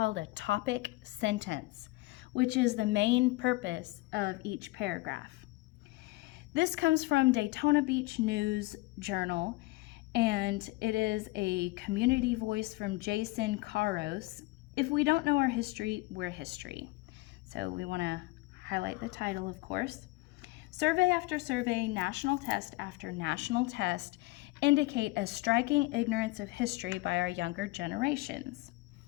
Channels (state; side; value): quieter; right; 21.5 dB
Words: a topic sentence, which is the main purpose of each paragraph. This comes from Daytona Beach News Journal, and it is a community voice from Jason Caros. If we don't know our history, we're history. So we want to highlight the title, of course. Survey after survey, national test after national test indicate a striking ignorance of history by our younger generations.